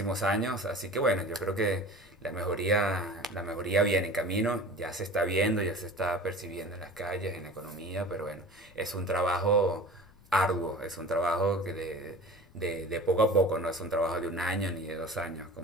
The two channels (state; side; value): noise; left; rumble, 26 dB below the sound